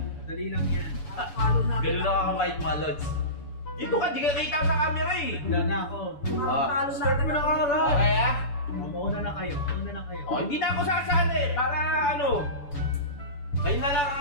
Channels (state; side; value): late; right; 7.0 ms